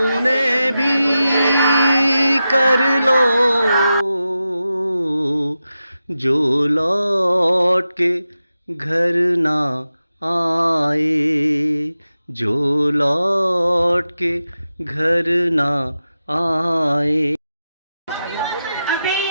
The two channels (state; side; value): inverted; both; correlation -0.91